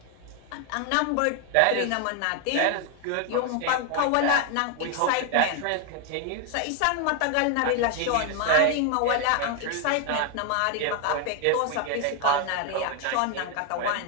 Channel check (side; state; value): both; different; correlation 0.00